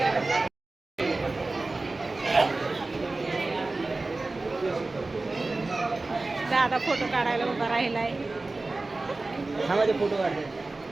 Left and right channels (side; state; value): left; quieter; 3.3 dB